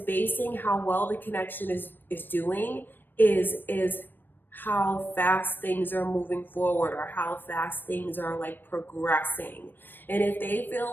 how well the connection is doing is how fast things are moving forward, or how fast things are like progressing. And if they feel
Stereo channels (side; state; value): right; late; 0.094 ms